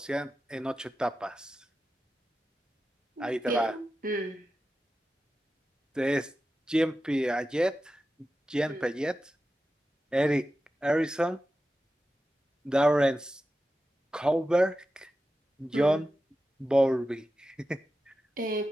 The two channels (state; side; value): normal; both; correlation 0.92